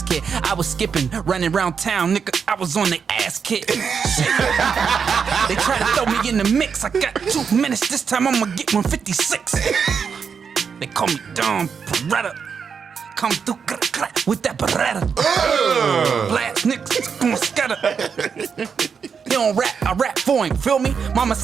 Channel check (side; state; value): left; quieter; 6.4 dB